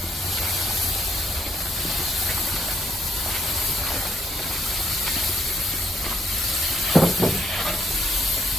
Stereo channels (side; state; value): both; normal; correlation 0.69